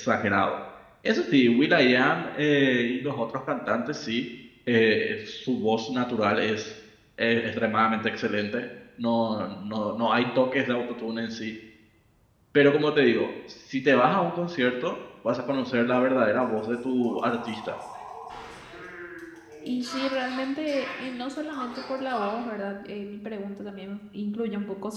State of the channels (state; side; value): identical; both; correlation 1.00